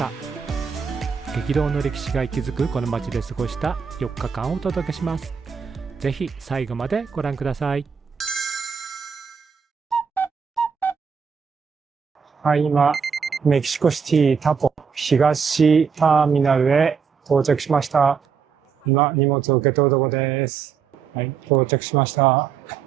激動の歴史が息づくこの街で過ごした4日間をお届けします。ぜひ最後までご覧ください。はい、今メキシコシティタポ東ターミナルへ到着しました。今荷物を受け取るところです。はい、到着しました。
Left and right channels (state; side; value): quieter; left; 6.4 dB